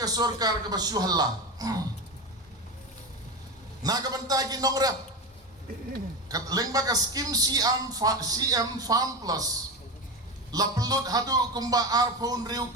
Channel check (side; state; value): both; normal; correlation 0.21